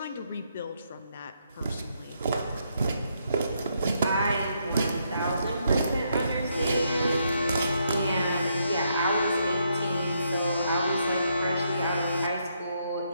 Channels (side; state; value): both; inverted; correlation -0.76